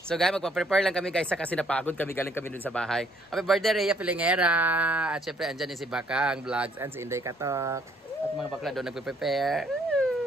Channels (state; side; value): normal; both; correlation 0.65